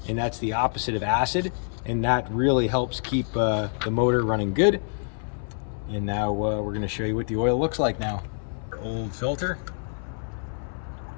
and that's the opposite of acid, and that really helps keep the motor running good. And now we're going to show you what the oil looks like now. Our old filter.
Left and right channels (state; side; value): silent; right; 59 dB below the other